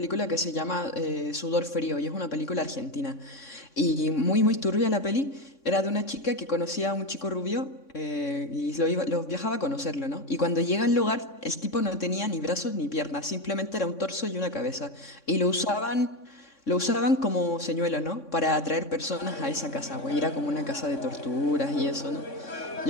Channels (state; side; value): late; right; 3.6 ms